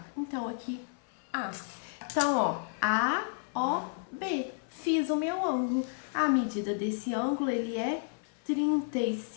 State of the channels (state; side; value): silent; right; 57 dB below the other